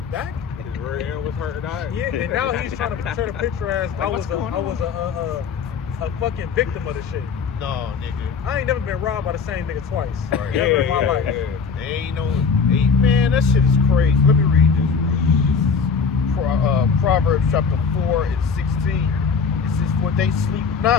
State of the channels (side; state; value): right; quieter; 5.7 dB